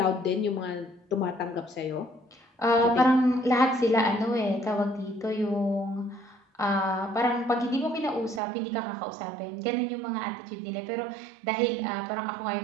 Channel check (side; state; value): left; drops out; at 8.4 s